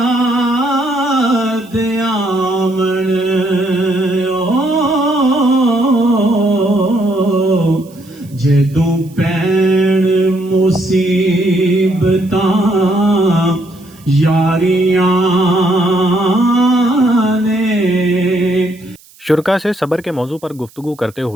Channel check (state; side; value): noise; right; hiss, 27 dB below the sound